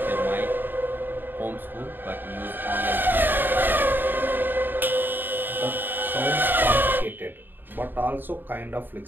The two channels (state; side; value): late; left; 0.093 ms